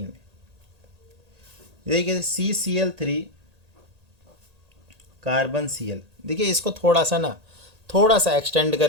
में। देखिए CCl3 कार्बन Cl। देखिए इसको थोड़ा सा एक्सटेंड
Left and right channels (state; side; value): late; left; 1.8 ms